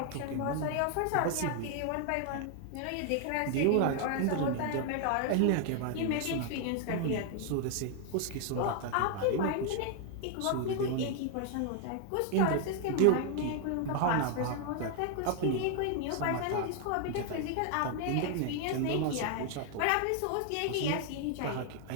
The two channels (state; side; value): different; both; correlation 0.00